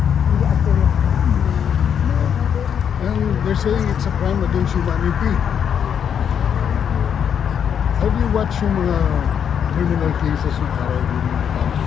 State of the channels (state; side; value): quieter; right; 8.1 dB